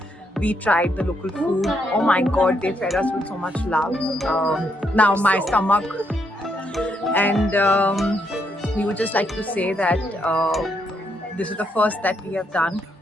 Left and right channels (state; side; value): normal; both; correlation 0.76